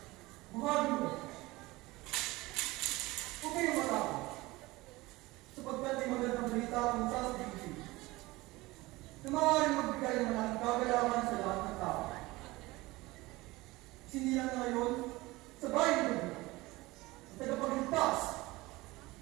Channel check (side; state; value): left; quieter; 20.6 dB